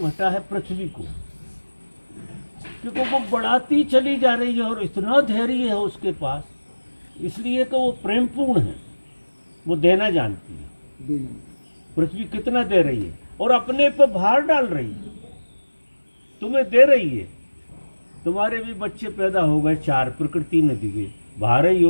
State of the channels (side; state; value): both; inverted; correlation -1.00